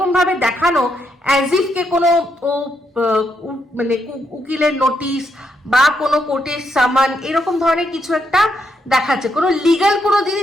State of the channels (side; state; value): both; normal; correlation 0.79